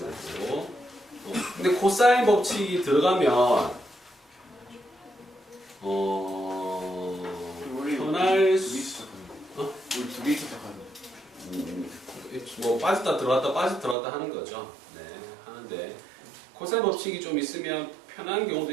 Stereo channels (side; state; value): left; drops out; at 14.0 s